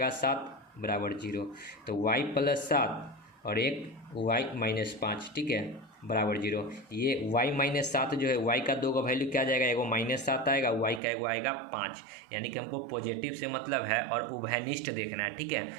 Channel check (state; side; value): drops out; left; at 11.0 s